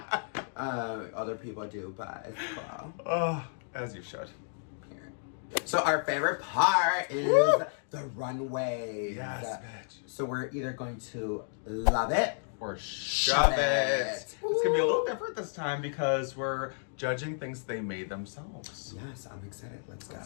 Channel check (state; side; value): silent; right; digital silence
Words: other people do, but it's cool. Oh, as you should. So our favorite part is the runway. Yes, bitch. So we're either going to love it Or shove it. It's gonna be a little different this time because we're judging things they made themselves. Yes, I'm excited. Let's go.